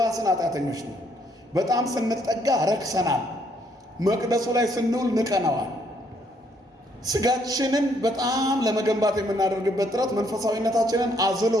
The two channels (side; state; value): both; normal; correlation 0.70